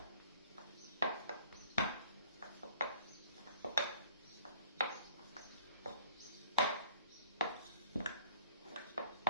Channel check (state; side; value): inverted; both; correlation -0.53